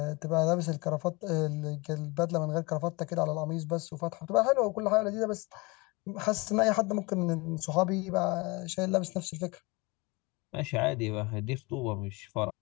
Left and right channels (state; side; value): quieter; right; 25.9 dB